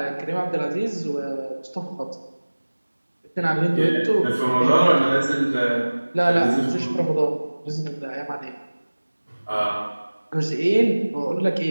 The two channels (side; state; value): both; inverted; correlation -1.00